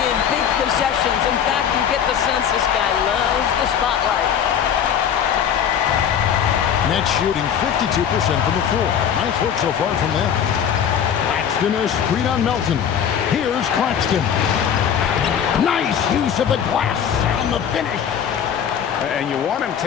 in big possessions. In fact, you get the sense this guy loves the spotlight. Nets shooting 52% from the floor. Nice work so far from them. Claxton is screen on Melton. Here's Claxton. Nice use of the glass on the finish. And you want him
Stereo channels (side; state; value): right; quieter; 8.5 dB